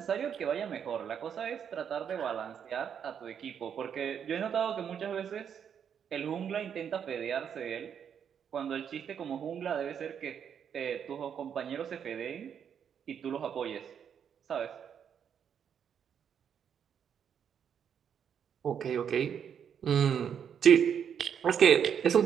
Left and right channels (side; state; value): left; quieter; 8.0 dB